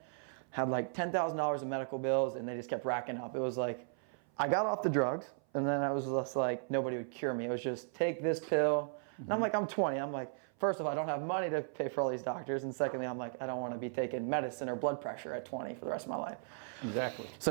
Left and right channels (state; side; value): silent; left; 54 dB below the other